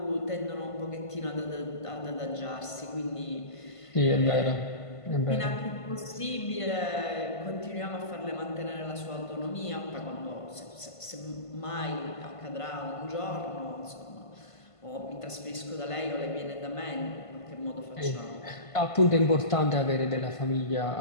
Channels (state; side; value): late; right; 1.5 ms